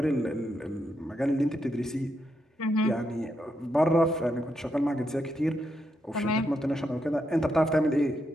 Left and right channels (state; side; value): normal; both; correlation 0.81